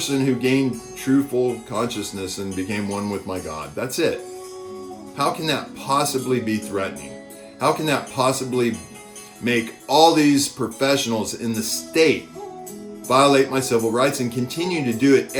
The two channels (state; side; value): identical; both; correlation 1.00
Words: who gained true full consciousness and became one with my God. That's it. How can that possibly be threatening? How can that possibly make all these professionals in the state violate my civil rights and continue to do it